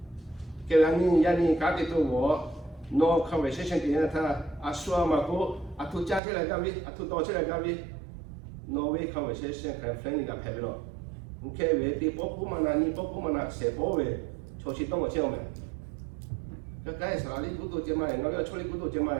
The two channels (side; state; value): left; drops out; at 6.2 s